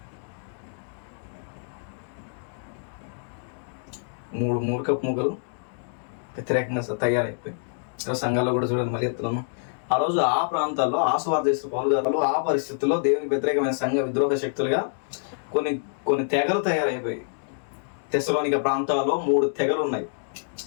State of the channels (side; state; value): right; silent; digital silence